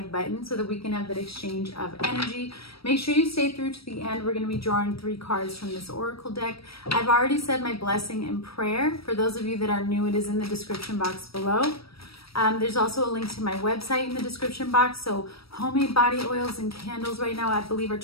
button so that we can have that exchange of energy. Make sure you stay through to the end. We're going to be drawing 3 cards from this oracle deck. I've already said my blessing and prayer. For those of you that are new, it is in the description box below. There's also a link to my website in the description box. So homemade body oils and candles right now, I believe, are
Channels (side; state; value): right; late; 0.76 ms